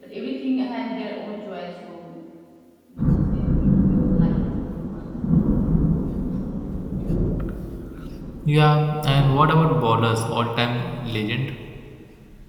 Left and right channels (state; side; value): identical; both; correlation 1.00